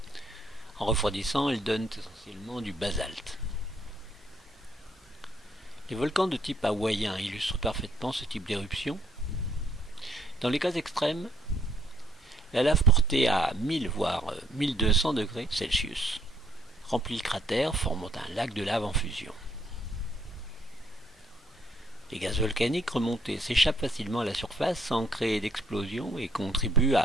En refroidissant, elles donnent essentiellement du basalte. Les volcans de type hawaïen illustrent parfaitement ce type d'éruption. Dans les cas extrêmes, la lave portée à 1000 voire 1200 degrés Celsius remplit le cratère, formant un lac de lave en fusion. Les gaz volcaniques remontés s'échappent facilement à la surface sans créer d'explosion et contribuent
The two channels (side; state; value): both; normal; correlation 0.67